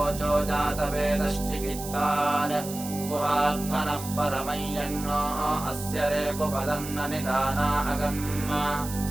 जातवेदश्चिकित्तान् गुहात्मनः परमं यन्नो अस्य रेकुपदन्न निदाना अगम्म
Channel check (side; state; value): right; noise; hiss, 11 dB below the sound